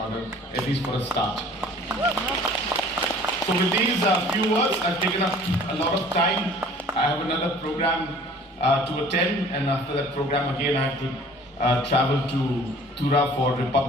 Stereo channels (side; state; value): both; normal; correlation 0.50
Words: at least for a start. So with these few words, I've taken up a lot of time. I have another program to attend, and after that program again I have to travel to Tura for